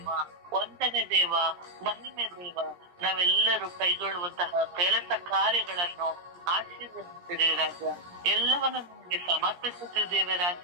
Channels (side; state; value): left; late; 17 ms